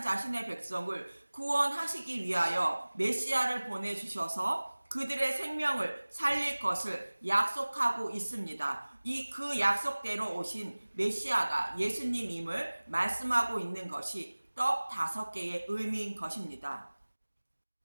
자신의 백성을 구원하시기 위하여 메시아를 보내주셔서 그들의 생명을 살릴 것을 약속하고 있습니다. 그 약속대로 오신 메시아가 예수님임을 말씀하고 있는 것이 떡 5개의 의미인 것입니다.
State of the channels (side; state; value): both; inverted; correlation -1.00